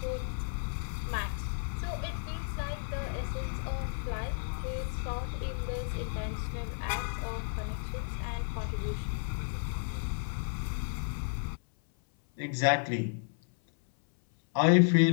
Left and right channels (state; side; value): silent; right; 56 dB below the other